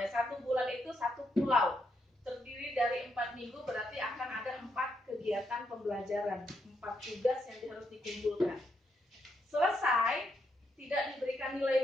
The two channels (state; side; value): normal; both; correlation 0.79